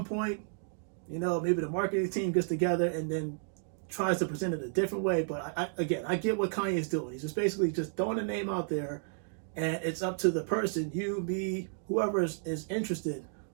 point, maybe the marketing team gets together and then tries to present it a different way. But I get what Kanye's doing. He's just basically just throwing a name out there, and it's up to the person, you, me, whoever is interested,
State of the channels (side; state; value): left; silent; digital silence